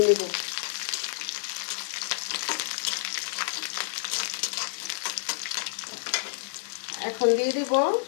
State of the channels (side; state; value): right; silent; digital silence